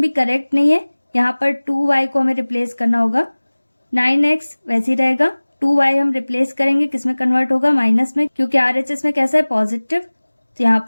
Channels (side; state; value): both; inverted; correlation -1.00